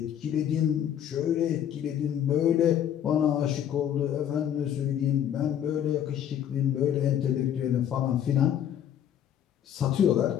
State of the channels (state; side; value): quieter; right; 9.9 dB